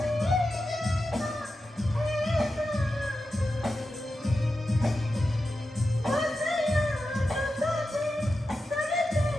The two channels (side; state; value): both; normal; correlation 0.91